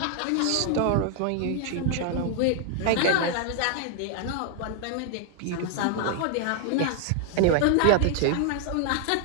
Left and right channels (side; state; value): both; different; correlation 0.00